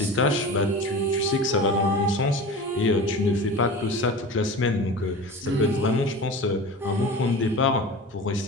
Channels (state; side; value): normal; both; correlation 0.34